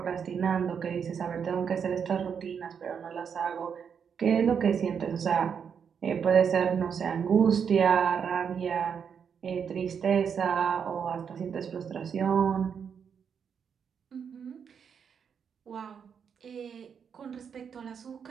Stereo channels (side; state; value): left; quieter; 7.1 dB